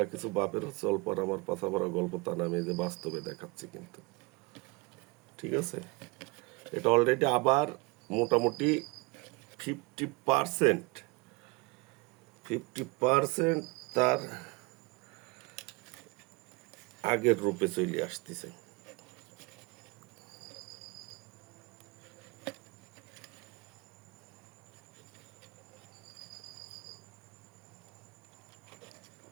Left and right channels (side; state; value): left; quieter; 25.9 dB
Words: কিছু বাপের হচ্ছে অল্প আর আমার পাছা ভরা গল্প, তা না, আমি এই যে বাস্তবে দেখাচ্ছি কিন্তু। ঠিক আছে, এটা অলরেডি আবার মোটামুটি 50% 50% তার আগের রূপে চলে আসতেছে।